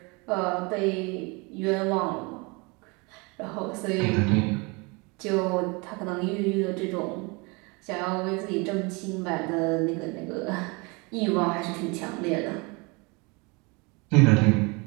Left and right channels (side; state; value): left; quieter; 28.5 dB